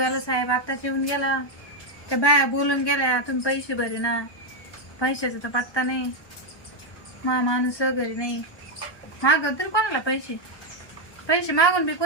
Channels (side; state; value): right; late; 1.1 ms